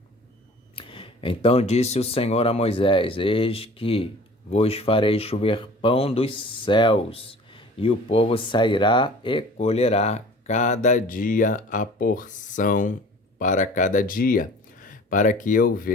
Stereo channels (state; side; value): normal; both; correlation 0.46